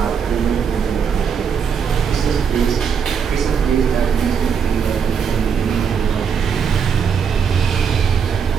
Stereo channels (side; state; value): left; quieter; 6.9 dB